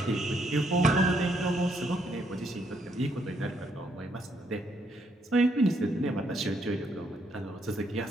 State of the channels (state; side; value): normal; both; correlation 0.73